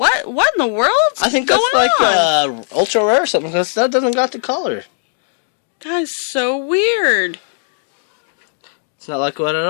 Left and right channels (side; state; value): right; silent; digital silence